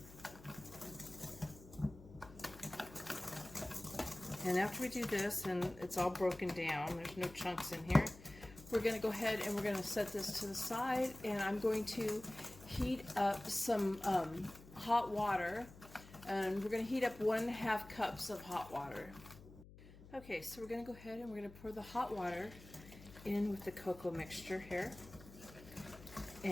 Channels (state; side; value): noise; left; hum, 18 dB below the sound